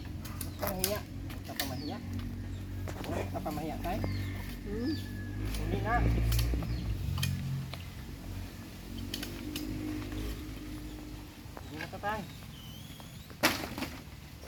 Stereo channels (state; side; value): identical; both; correlation 1.00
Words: Papahiya. Papamahiya. Uy, papamahiya tayo. Hmm? Hindi na. Hindi na tayo.